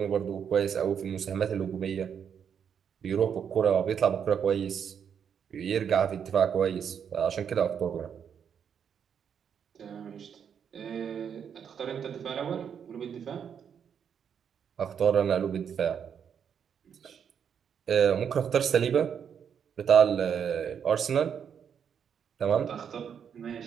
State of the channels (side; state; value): left; quieter; 7.7 dB